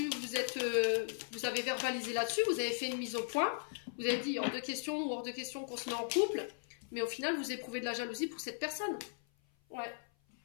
vous avez verbalisé là-dessus, vous avez fait une mise au point. Vous avez dit hors de question ou hors de question qu'on se met en couple, mais au final, vous éprouvez de la jalousie pour cette personne. Ouais.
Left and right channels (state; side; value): silent; right; 53 dB below the other